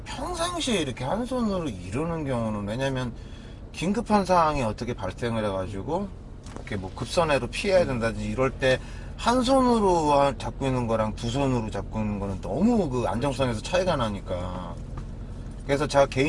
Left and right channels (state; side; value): identical; both; correlation 1.00